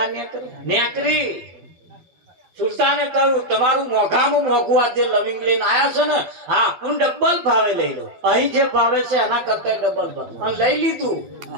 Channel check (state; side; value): late; left; 12 ms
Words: નેકરી. સુલતાને કહ્યું તમારું મોંઘામાં મોંઘું આ જે લવિંગ લઈને આવ્યા છે ને, હા હું ડબલ ભાવે લઈ લઉં, અહીં જે ભાવે છે એના કરતા ડબલ ભાવે. અને લઈ લીધું.